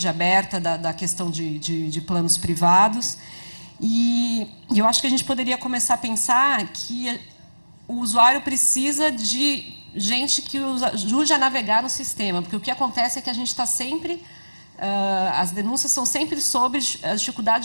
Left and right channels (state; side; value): inverted; both; correlation -1.00